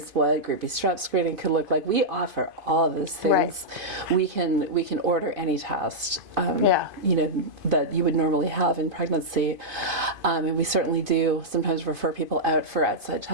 what group B strep screening could look like. We offer all of those things. Right. We can order any test. That you would normally have in pregnancy, and we certainly do sometimes refer people out for outside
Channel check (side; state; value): left; late; 2.5 ms